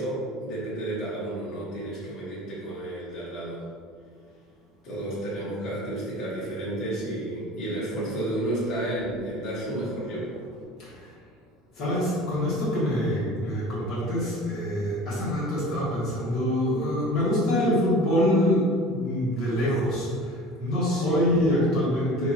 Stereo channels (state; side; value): normal; both; correlation 0.40